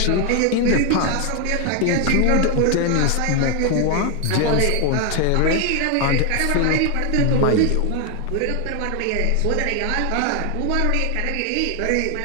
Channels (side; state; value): both; different; correlation 0.01